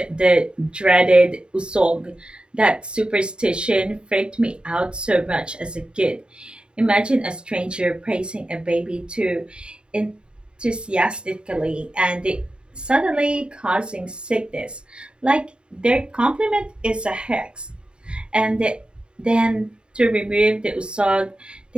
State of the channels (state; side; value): late; left; 0.051 ms